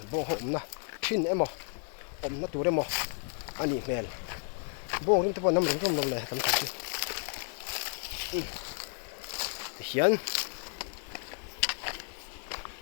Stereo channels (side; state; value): right; silent; 56 dB below the other